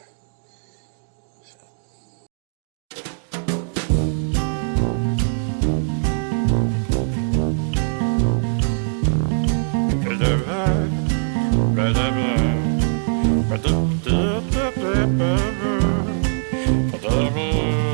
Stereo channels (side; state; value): left; silent; digital silence